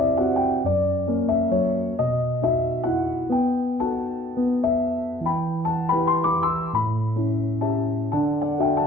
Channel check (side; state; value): both; normal; correlation 0.57